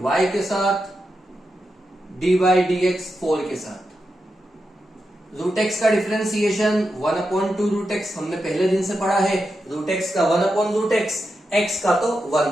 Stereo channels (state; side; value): normal; both; correlation 0.87